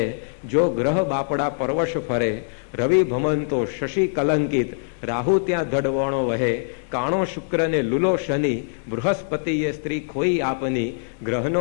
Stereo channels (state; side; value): silent; right; digital silence